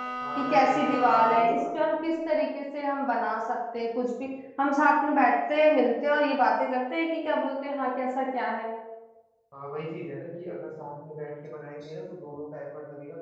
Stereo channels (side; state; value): both; identical; correlation 1.00